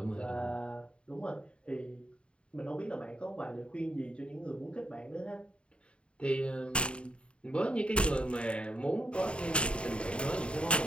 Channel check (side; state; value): right; late; 0.056 ms